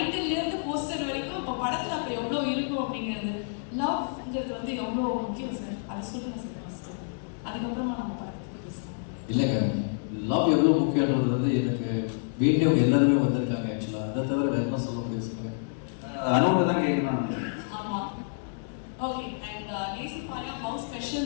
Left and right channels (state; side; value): silent; right; digital silence